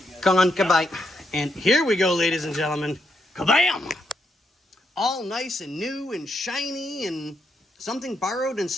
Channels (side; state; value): both; normal; correlation 0.80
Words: Come on, goodbye. And here we go, ladies and gentlemen. Kabam! All nice and new and shiny and something borrowed and